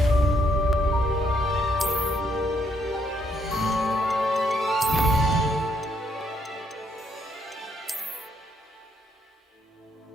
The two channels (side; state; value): both; normal; correlation 0.73